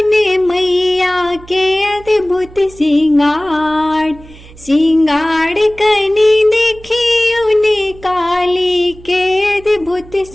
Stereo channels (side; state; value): right; noise; hum, 21 dB below the sound